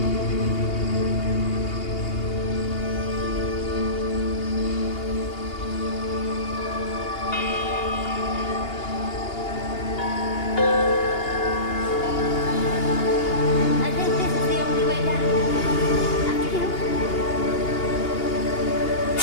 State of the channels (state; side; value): late; right; 2.8 ms